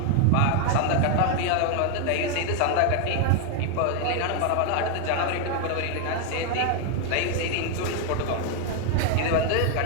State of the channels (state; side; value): different; both; correlation 0.01